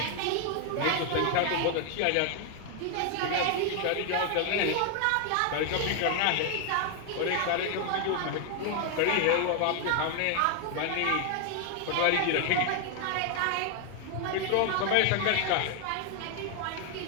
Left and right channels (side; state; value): both; different; correlation 0.00